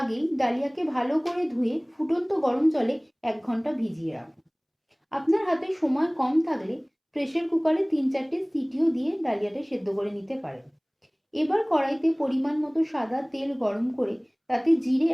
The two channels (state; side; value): identical; both; correlation 1.00